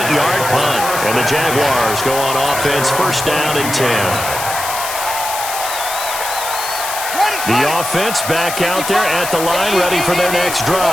punt. And the Jaguars go on offense, first down and 10. The offense back out there at the line, ready for their next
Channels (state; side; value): noise; left; hiss, 6 dB below the sound